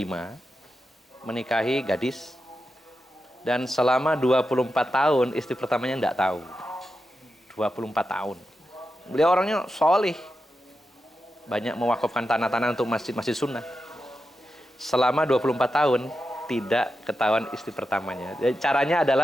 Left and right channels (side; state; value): both; normal; correlation 0.89